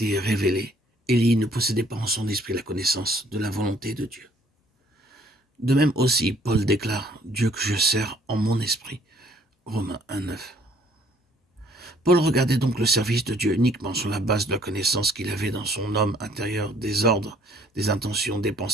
révélée, Élie ne possédait pas en son esprit la connaissance de la volonté de Dieu. De même aussi, Paul déclare « Dieu que je sers en mon esprit » Romains 1:9. Paul regardait donc le service de Dieu uniquement sur la base de la connaissance qu'il avait dans son homme intérieur des ordres, des intentions, des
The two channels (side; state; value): both; normal; correlation 0.61